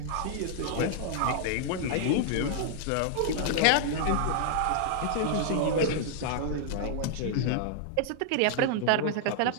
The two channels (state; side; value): different; both; correlation -0.01